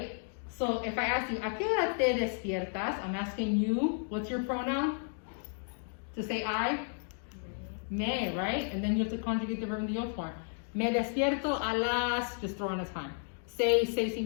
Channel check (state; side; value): silent; right; 56 dB below the other